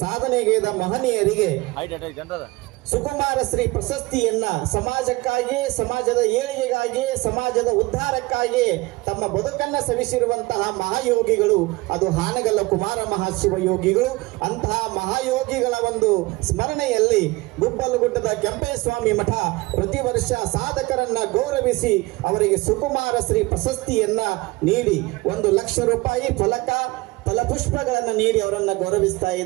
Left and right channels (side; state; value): left; quieter; 22.2 dB